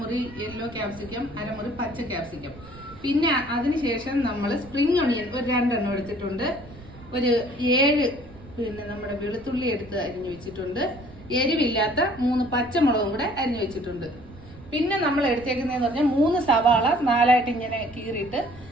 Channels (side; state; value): right; noise; rumble, 19 dB below the sound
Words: മുറി യെല്ലോ ക്യാപ്സിക്കം, 1/2 മുറി പച്ച ക്യാപ്സിക്കം. പിന്നെ അതിനുശേഷം നമ്മൾ സ്പ്രിംഗ് ഒണിയൻ ഒരു 2 എണ്ണം എടുത്തിട്ടുണ്ട്. ഒരു 7 പിന്നെ നമ്മുടെ വെളുത്തുള്ളി എടുത്ത് അരിഞ്ഞു വെച്ചിട്ടുണ്ട്. എരിവില്ലാത്ത 3 പച്ചമുളകും കൂടെ അരിഞ്ഞു വെച്ചിട്ടുണ്ട്. പിന്നെ നമ്മൾ എടുത്തേക്കുന്നതെന്ന് പറഞ്ഞാൽ 3 സവാള 4ആയിട്ട് ഇങ്ങനെ കീറിയിട്ട്